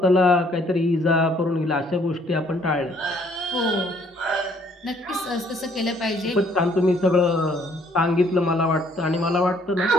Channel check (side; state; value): both; normal; correlation 0.63